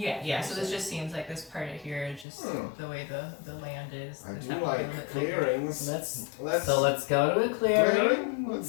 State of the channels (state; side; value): drops out; right; at 2.2 s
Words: So this just seems like this part of here is just the way the land is. I There's do not really a like bit clearings. Let's Let's go to a clearing.